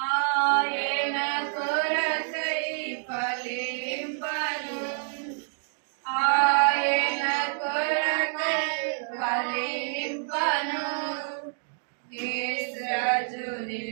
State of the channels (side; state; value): left; silent; digital silence